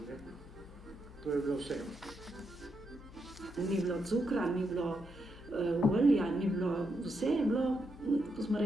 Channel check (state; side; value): noise; left; hum, 18 dB below the sound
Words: ne. To je bilo vse. Ni bilo cukra, ni bilo olja, ni bilo, vse je bilo, ko smo